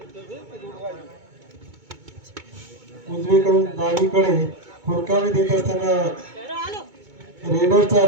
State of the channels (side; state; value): left; late; 2.2 ms